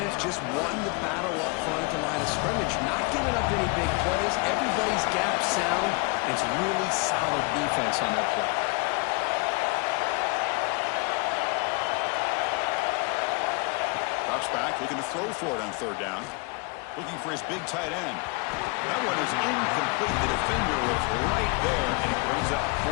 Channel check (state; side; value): quieter; right; 29.5 dB